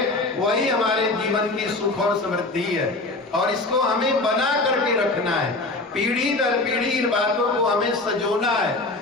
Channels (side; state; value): right; quieter; 3.1 dB